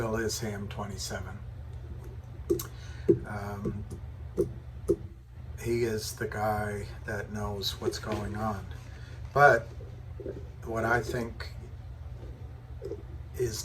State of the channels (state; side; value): identical; both; correlation 1.00